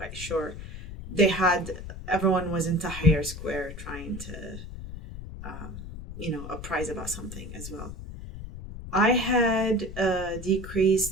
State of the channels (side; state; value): left; noise; rumble, 11 dB below the sound